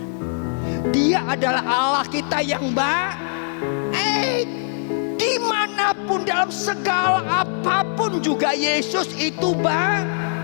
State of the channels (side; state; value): right; silent; digital silence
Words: Dia adalah Allah kita yang baik. Dimanapun dalam segala apapun juga Yesus itu baik.